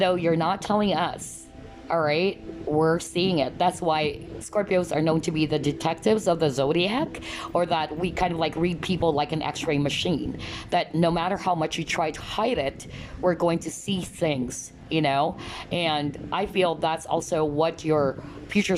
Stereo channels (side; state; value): both; identical; correlation 1.00